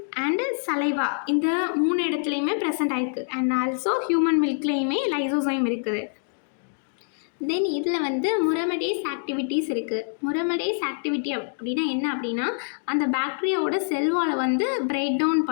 அண்ட் சலைவா இந்த 3 இடத்துலையுமே ப்ரெசென்ட் ஆகிருக்கு. அண்ட் ஆல்சோ ஹியூமன் மில்க்லேயுமே லைசோசைம் இருக்குது. தென் இதில் வந்து முரமடேஸ் ஆக்டிவிட்டீஸ் இருக்குது. முரமடேஸ் ஆக்டிவிட்டி அப்படின்னா என்ன அப்படின்னா அந்த பாக்டீரியாவோட செல்வாலை வந்து பிரேக் டவுன்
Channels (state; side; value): silent; right; digital silence